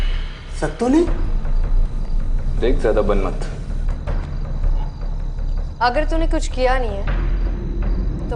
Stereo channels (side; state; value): both; identical; correlation 1.00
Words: सत्तू ने? देख, ज्यादा बन मत। अगर तूने कुछ किया नहीं है